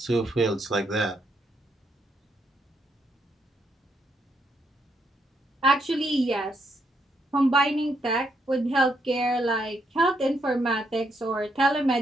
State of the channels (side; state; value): both; normal; correlation 0.76